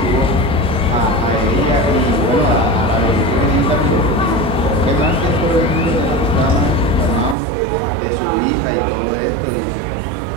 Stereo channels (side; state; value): left; drops out; at 7.4 s